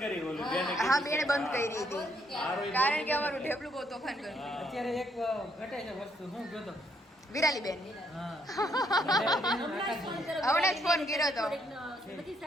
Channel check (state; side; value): normal; both; correlation 0.72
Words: કરી ઓલું બેને હા બેને બંધ કરી હતી કારણ કે અમારું ઢેપલું બહુ તોફાન કર્યું. અત્યારે એક ઘટે છે વસ્તુ, હું ગયો તો વિરાલી બેન હા હમણાં જ ફોન કર્યો હતો. બધી